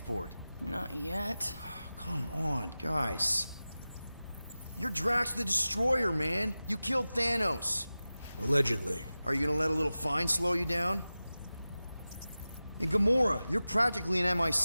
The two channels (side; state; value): both; inverted; correlation -0.96